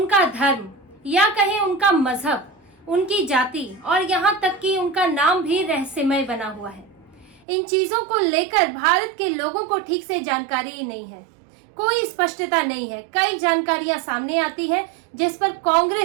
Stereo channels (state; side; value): drops out; left; at 7.5 s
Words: धर्म या कहें उनका मजहब, उनकी जाति और यहाँ तक कि उनका नाम भी रहस्यमय बना हुआ है। इन चीजों को लेकर भारत के लोगों को ठीक से जानकारी ही नहीं है, कोई स्पष्टता नहीं है। कई जानकारियां सामने आती है जिस पर